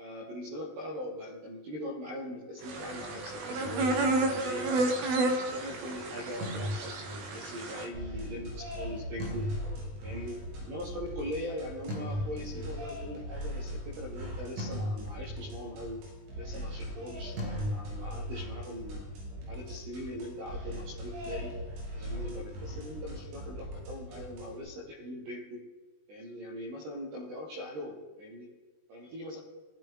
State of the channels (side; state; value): left; late; 20 ms